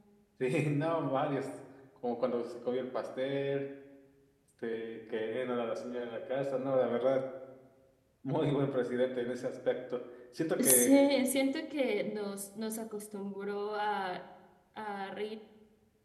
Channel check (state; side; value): identical; both; correlation 1.00